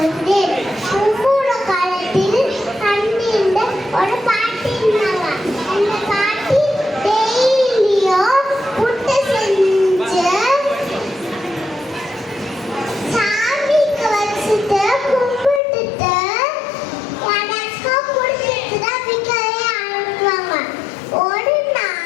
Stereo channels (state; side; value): drops out; right; at 15.6 s